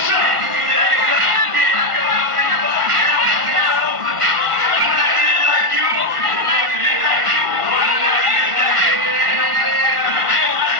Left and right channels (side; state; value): left; late; 1.5 ms